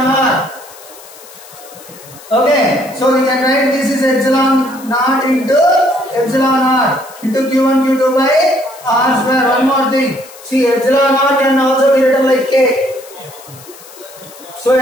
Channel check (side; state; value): left; noise; hiss, 20 dB below the sound